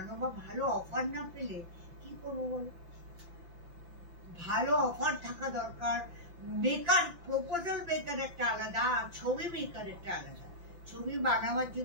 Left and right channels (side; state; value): left; late; 5.8 ms